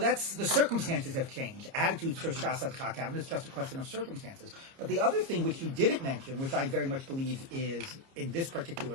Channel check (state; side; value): late; left; 30 ms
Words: the circumstances have changed. Attitudes towards Shas HaTchak haven't. It's just a question of circumstances. But the other thing which you didn't mention, which I very much believe is in this